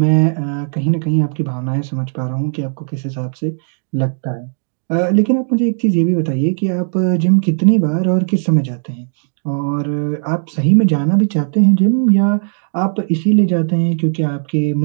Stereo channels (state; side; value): silent; left; digital silence